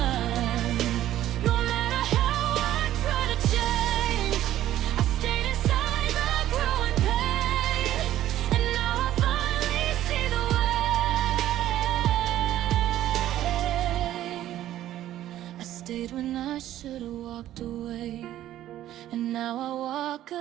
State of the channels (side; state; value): left; quieter; 13.0 dB